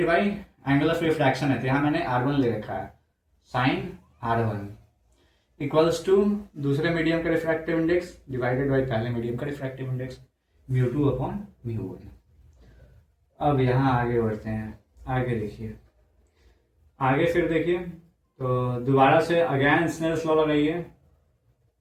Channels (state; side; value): identical; both; correlation 1.00